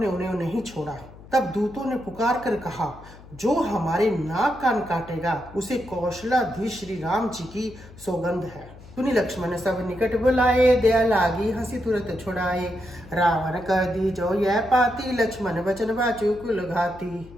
उन्हें नहीं छोड़ा। तब दूतों ने पुकार कर कहा, जो हमारे नाक कान काटेगा उसे कौशलाधीश श्री राम जी की सौगंध है। सुनि लक्ष्मण सब निकट बुलाए, दया लागी हंसी तुरंत छुड़ाए। रावण कर दी जो यह पाती, लक्ष्मण वचन बाचु कुल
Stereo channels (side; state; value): left; noise; hum, 20 dB below the sound